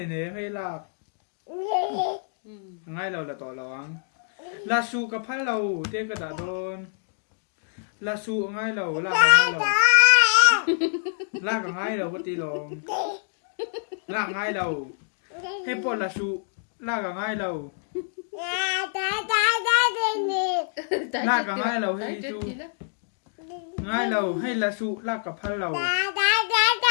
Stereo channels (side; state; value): right; silent; digital silence